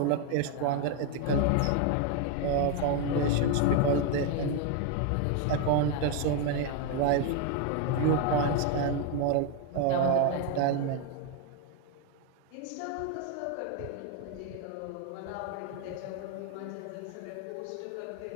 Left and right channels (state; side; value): different; both; correlation 0.01